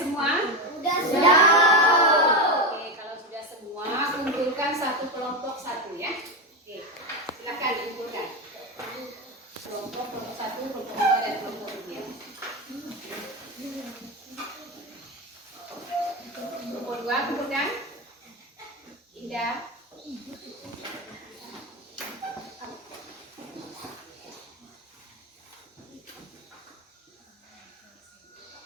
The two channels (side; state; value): both; normal; correlation 0.14